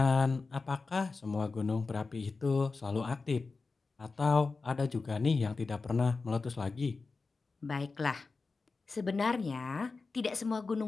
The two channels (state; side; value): quieter; right; 4.1 dB